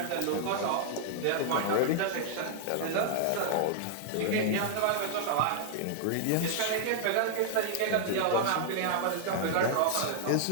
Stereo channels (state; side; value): different; both; correlation -0.01